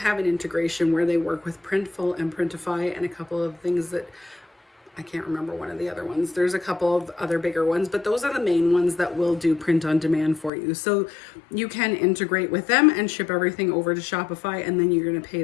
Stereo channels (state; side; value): drops out; right; at 10.5 s